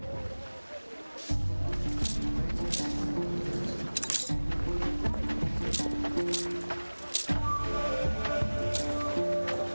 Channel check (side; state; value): both; inverted; correlation -1.00